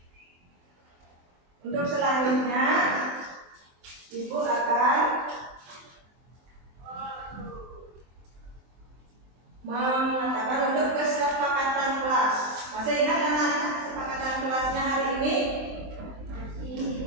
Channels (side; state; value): left; late; 23 ms